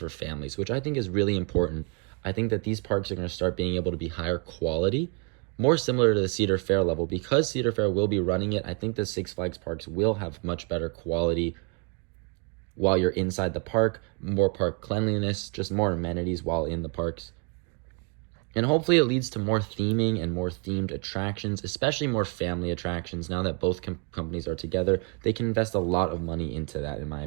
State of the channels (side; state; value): left; quieter; 33.0 dB